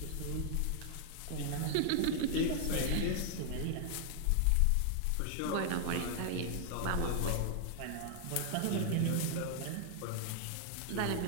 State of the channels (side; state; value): both; different; correlation 0.00